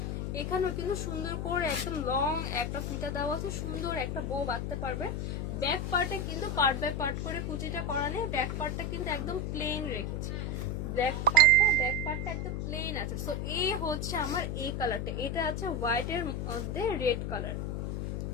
এখানেও কিন্তু সুন্দর করে একদম লং একটা ফিতা দেওয়া আছে, সুন্দর একটা বো বাঁধতে পারবে। ব্যাক পার্টে কিন্তু পার্ট বাই পার্ট করে কুচিটা করা নেই, ব্যাক পার্টটা কিন্তু একদম প্লেন রেখেছি। ব্যাক পার্টটা একদম প্লেন আছে। সো এই হচ্ছে আমার এই কালারটা, এটা আছে হোয়াইট এর মধ্যে রেড কালার,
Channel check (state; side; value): noise; left; hum, 2 dB below the sound